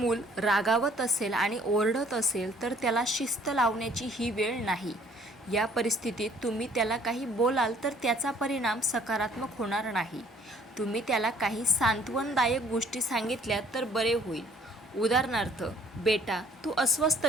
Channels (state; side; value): normal; both; correlation 0.59